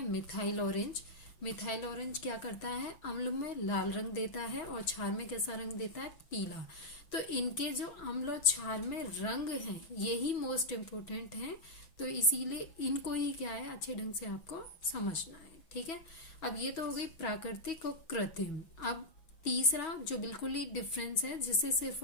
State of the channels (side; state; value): right; late; 6.2 ms